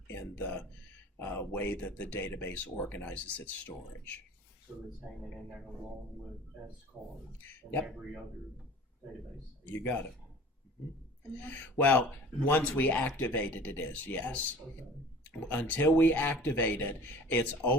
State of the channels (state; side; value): normal; both; correlation 0.44